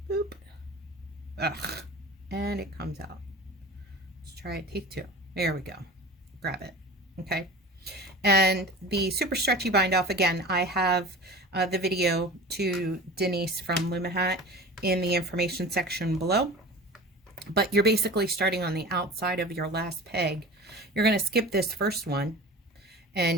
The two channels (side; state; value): both; normal; correlation 0.36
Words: Boop. Ugh. And it comes out. Let's try it, take 2. There we go. Grab it. Okay. And the super stretchy bind off, again, I have the video to Denise from Lumahat in the information section below. But you're basically starting on the outside of your last peg. You're going to skip this first one,